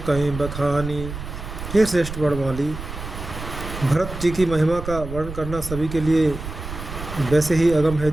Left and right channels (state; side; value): noise; right; rumble, 9 dB below the sound